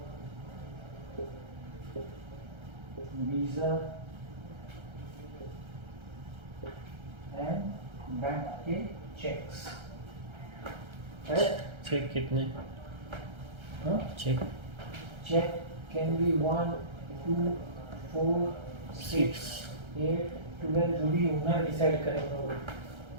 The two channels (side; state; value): left; late; 1.3 ms